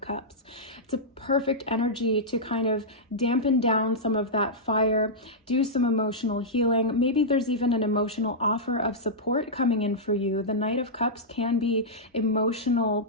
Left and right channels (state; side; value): normal; both; correlation -0.11